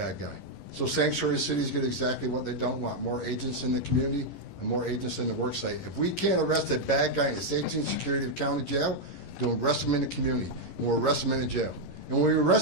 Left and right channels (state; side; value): late; right; 11 ms